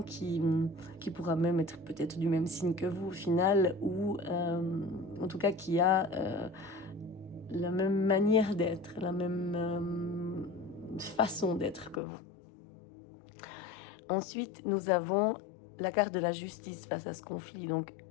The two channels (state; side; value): drops out; right; at 12.0 s